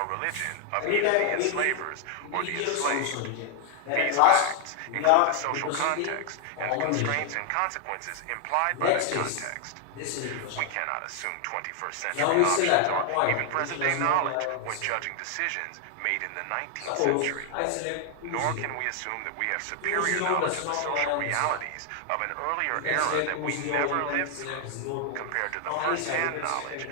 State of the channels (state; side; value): different; both; correlation 0.00